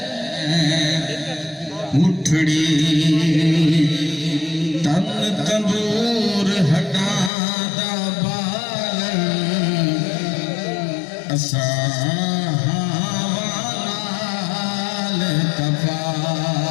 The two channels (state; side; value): drops out; right; at 7.3 s